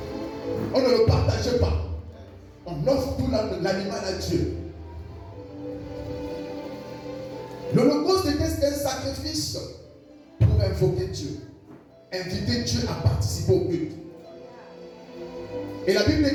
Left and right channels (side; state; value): both; identical; correlation 1.00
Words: On ne le partage pas. On offre tout l'animal à Dieu. L'Holocauste était un sacrifice pour invoquer Dieu, inviter Dieu à participer au culte. Et la Bible